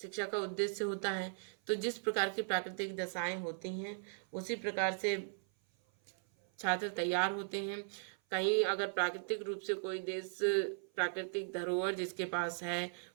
का उद्देश्य होता है। तो जिस प्रकार की प्राकृतिक दशाएं होती हैं उसी प्रकार से छात्र तैयार होते हैं। कहीं अगर प्राकृतिक रूप से कोई देश प्राकृतिक धरोहर जिसके पास है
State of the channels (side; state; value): left; silent; 53 dB below the other